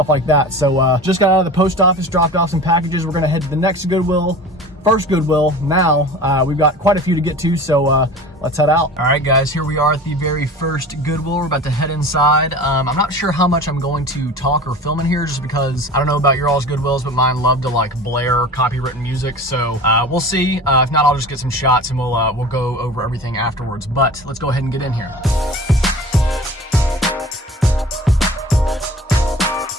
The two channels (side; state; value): both; normal; correlation 0.38